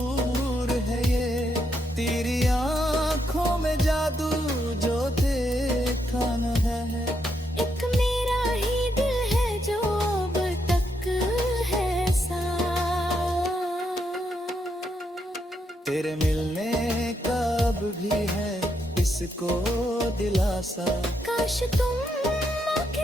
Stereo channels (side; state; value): both; normal; correlation 0.79